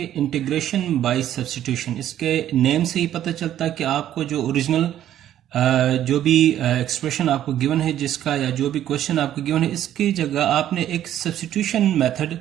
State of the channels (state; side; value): quieter; left; 11.6 dB